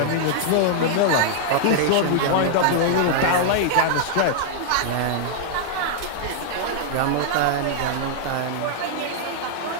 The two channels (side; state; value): both; different; correlation -0.01